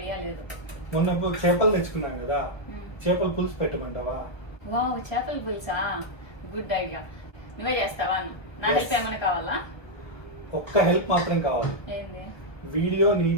లేదు. మొన్న చేపలు తెచ్చుకున్నాం కదా, చేపల పులుసు పెట్టమంటావా? వావ్, చేపల పులుసా, గుడ్ ఐడియా. నువ్వే చేస్తావా? నా హెల్ప్ ఏమైనా కావాలా? ఒక్క హెల్ప్ మాత్రం కావాలి. ఏంది? వీడియో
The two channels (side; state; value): right; late; 1.3 ms